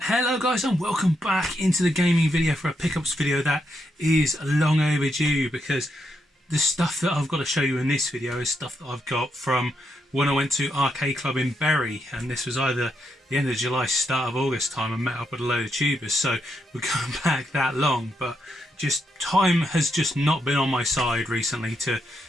Hello guys, and welcome back into the gaming video for a pickups video that is long overdue, because the stuff that I've got to show you in this video is stuff that I've got from when I went to Arcade Club in Bury, and this was either the end of July, start of August time. I met up with a load of tubers, so we're going back that long, but just time has just not been on my side recently to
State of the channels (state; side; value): normal; both; correlation 0.81